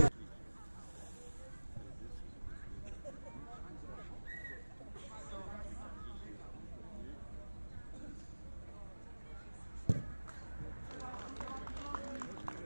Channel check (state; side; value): inverted; both; correlation -1.00